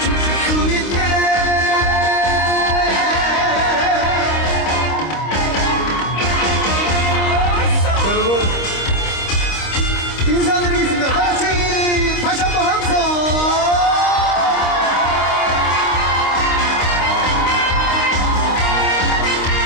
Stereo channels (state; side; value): late; right; 26 ms